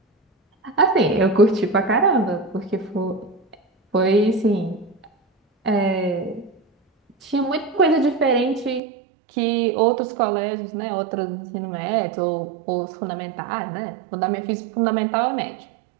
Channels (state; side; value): drops out; left; at 8.8 s